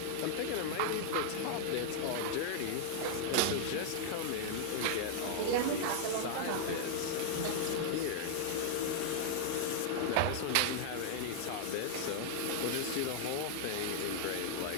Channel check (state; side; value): different; both; correlation -0.01